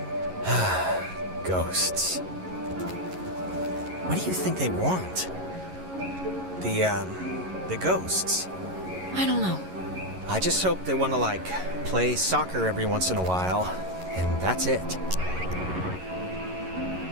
Ghosts. What do you think they want? The ghosts. I don't know. I just hope they want to, like, play soccer every once in a while, and that's it.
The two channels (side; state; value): left; late; 11 ms